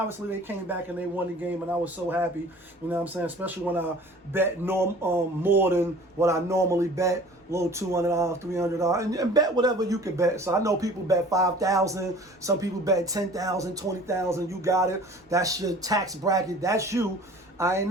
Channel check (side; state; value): both; normal; correlation 0.46